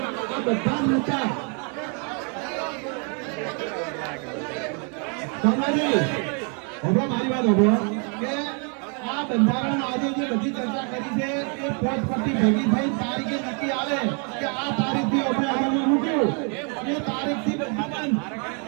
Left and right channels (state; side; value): quieter; left; 38.4 dB